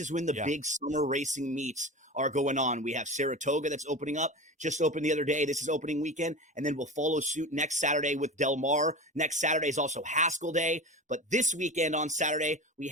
when the big summer racing meets are going on. We have Saratoga that's opening up. Just opened the other day. This is opening weekend, and then we'll follow suit next Saturday with Del Mar. Next Saturday is also Haskell Day. But this weekend on Saturday, we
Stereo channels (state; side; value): normal; both; correlation 0.30